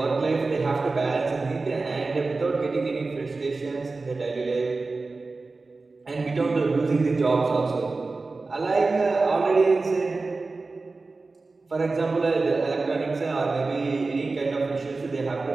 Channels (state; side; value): quieter; left; 3.7 dB